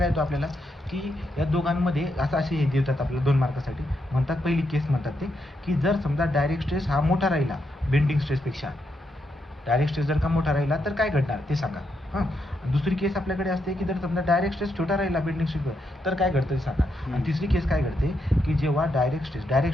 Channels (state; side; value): normal; both; correlation 0.81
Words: येतो आपल्याला की या दोघांमध्ये असे हे देतात आपल्याला 2 मार्कासाठी. म्हणतात पहिली केस म्हणतात ते की जर समजा डायरेक्ट स्ट्रेस हा मोठा राहिला बेंडिंग स्ट्रेसपेक्षा, डायरेक्ट स्ट्रेस जर का मोठा राहिला तर काय घडणार ते सांगा. दुसरी केस आपल्याकडे असते की जर समजा डायरेक्ट स्ट्रेस छोटा राहिला बेंडिंग स्ट्रेसवर तर काय घडतं ते सांगा. आणि तिसरी केस काय घडते की जेव्हा डायरेक्ट